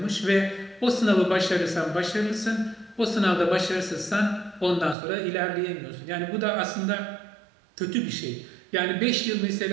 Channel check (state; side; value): drops out; left; at 5.0 s